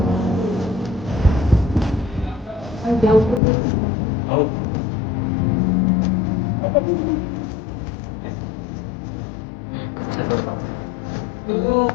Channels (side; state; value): right; drops out; at 3.4 s